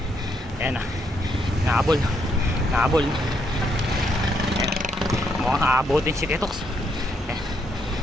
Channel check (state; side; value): normal; both; correlation 0.75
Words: Ayan na. Nahabol. Nahabol. Ayan. Mukhang aabutin si Tetox. Ayan.